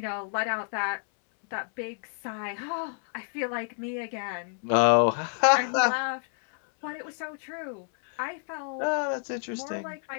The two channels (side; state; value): right; silent; 59 dB below the other